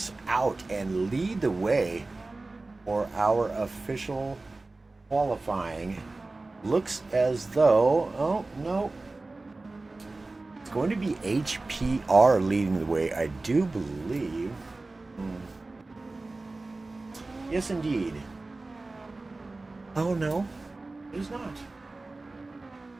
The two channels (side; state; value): left; quieter; 3.2 dB